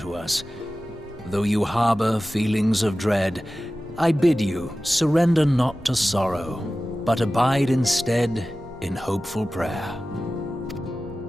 us. Though you harbor feelings of dread, I bid you surrender not to sorrow, but abide instead in hopeful prayer.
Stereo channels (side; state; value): both; normal; correlation 0.96